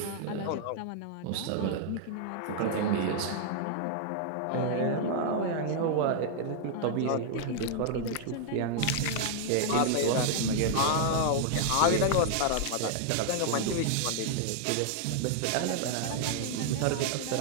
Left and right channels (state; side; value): different; both; correlation -0.01